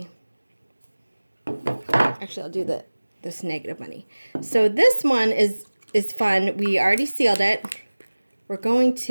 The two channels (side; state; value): both; inverted; correlation -1.00